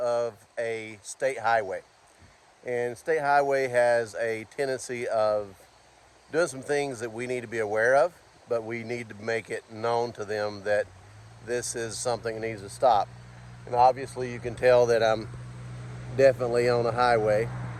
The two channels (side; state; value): both; identical; correlation 1.00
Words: a state highway, and state highway has a tendency of doing some things that we need to be aware of, but we need to make it known to them that this is something that needs to stop. And obviously you can tell that I'm definitely on a highway